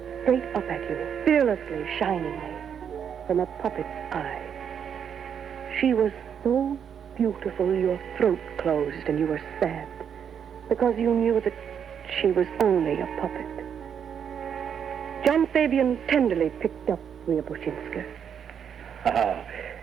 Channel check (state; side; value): quieter; left; 7.9 dB